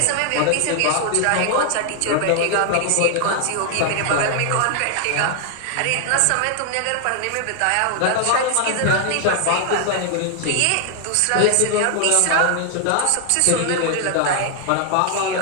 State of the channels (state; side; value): different; both; correlation 0.00